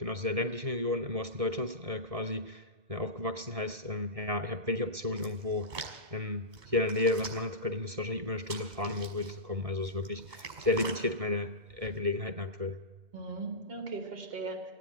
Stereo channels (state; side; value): late; left; 2.2 ms